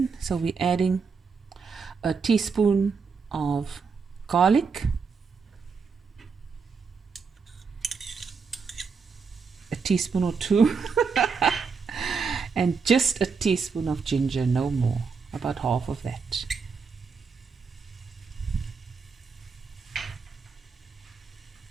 so we're adding a teaspoon of garlic, a teaspoon or two, and just a teaspoon of ginger, no more, about half of that.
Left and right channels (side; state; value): left; quieter; 5.4 dB